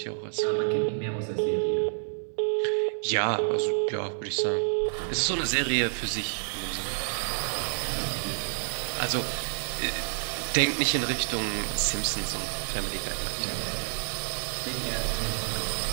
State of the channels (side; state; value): left; silent; digital silence